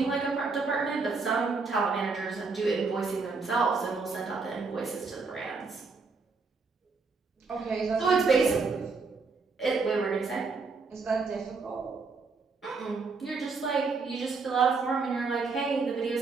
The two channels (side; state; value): left; quieter; 4.4 dB